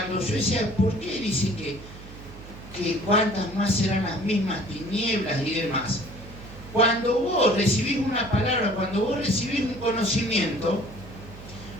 yo decía, ¿por qué dice que cuántas más serán las mismas tinieblas y demás? Cuando vos recibís una palabra, cuando vos recibís un conocimiento,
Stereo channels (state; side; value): noise; right; hum, 16 dB below the sound